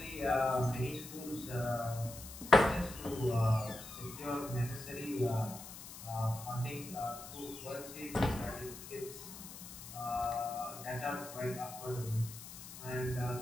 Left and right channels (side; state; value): left; noise; hiss, 13 dB below the sound